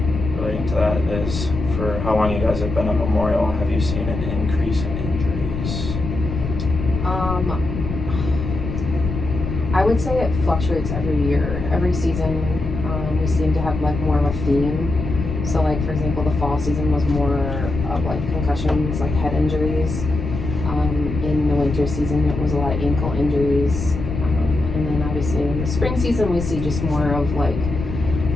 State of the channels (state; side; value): noise; left; rumble, 5 dB below the sound